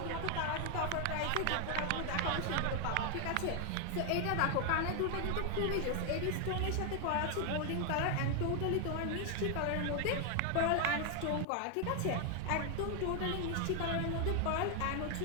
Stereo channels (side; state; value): both; different; correlation 0.00